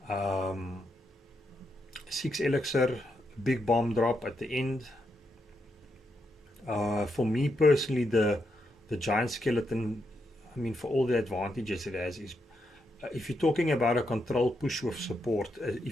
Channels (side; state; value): both; normal; correlation 0.82